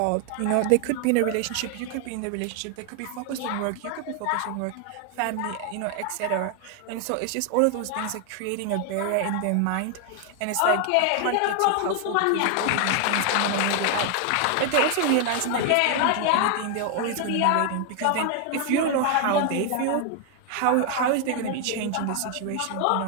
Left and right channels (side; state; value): both; different; correlation 0.00